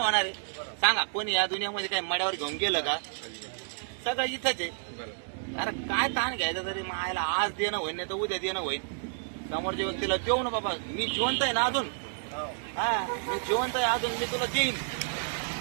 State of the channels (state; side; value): silent; left; digital silence